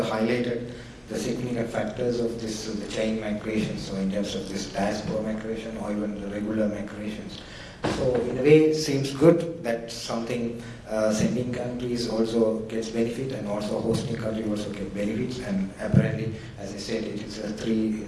the significant factors of this, the chain migration, so in terms of this diaspora migration or even the regular migrations. So in a way, it seems good that something Sending countries also gets benefit, and also hosting country also get benefits. And apparently, as I said, it is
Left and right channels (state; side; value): identical; both; correlation 1.00